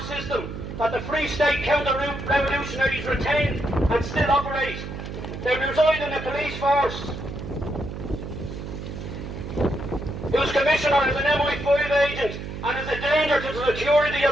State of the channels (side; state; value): right; noise; hum, 8 dB below the sound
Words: system that the Free State counter-revolutionaries retained and still operate. They reside in the police force, whose commissioner is an MI5 agent and is a danger to the security